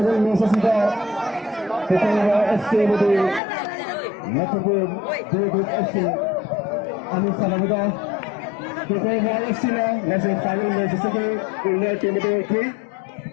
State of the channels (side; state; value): right; drops out; at 3.4 s